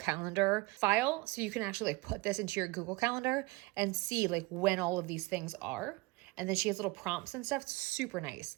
file. So you can actually like put this into your Google Calendar and see like when all of these things are. And then she has little prompts and stuff. It's super nice.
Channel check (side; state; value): left; quieter; 23.4 dB